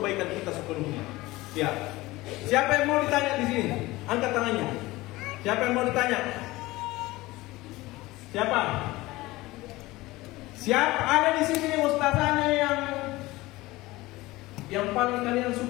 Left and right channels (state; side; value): quieter; right; 19.6 dB